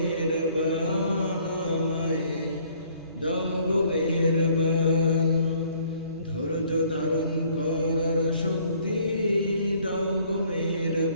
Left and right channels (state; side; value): inverted; both; correlation -0.60